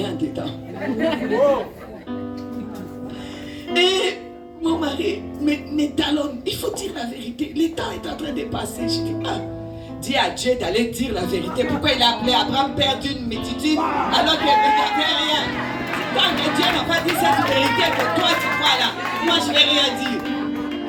dedans. Et mon mari me talonne. Il faut dire la vérité. Le temps est en train de passer. Je dis, dis à Dieu d'aller dire la vérité. Pourquoi il a appelé Abraham père d'une multitude alors qu'il n'y avait rien? Tant que Dieu n'a pas dit cette vérité que toi tu crois là, moi je ne vais rien dire.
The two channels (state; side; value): identical; both; correlation 1.00